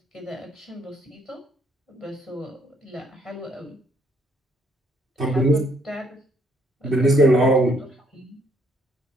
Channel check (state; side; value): normal; both; correlation 0.68